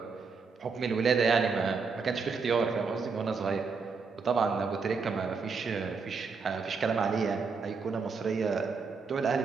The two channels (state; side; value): quieter; left; 4.9 dB